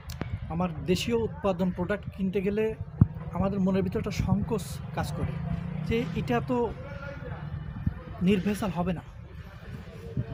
আমার দেশীয় উৎপাদন প্রোডাক্ট কিনতে গেলে আমাদের মনের ভিতরে একটা সংকোচ কাজ করে যে এটা তো নির্ভেজাল হবে না,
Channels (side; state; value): both; identical; correlation 1.00